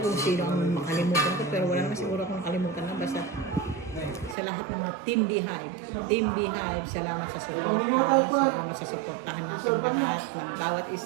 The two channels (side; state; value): left; drops out; at 4.4 s